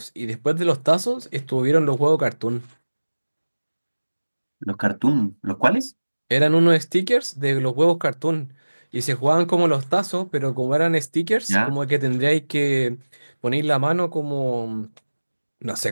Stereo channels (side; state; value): both; inverted; correlation -1.00